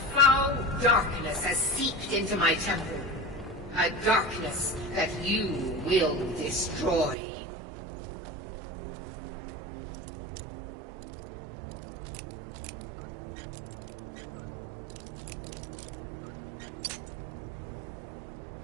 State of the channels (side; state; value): left; drops out; at 7.2 s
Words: darkness has seeped into my temple. A darkness that you will destroy.